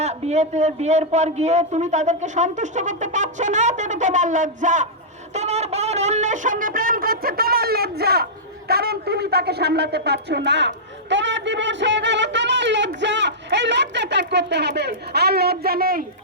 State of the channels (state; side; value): normal; both; correlation -0.13